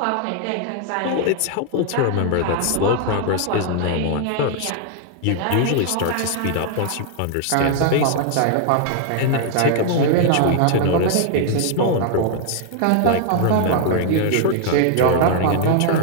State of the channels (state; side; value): different; both; correlation 0.00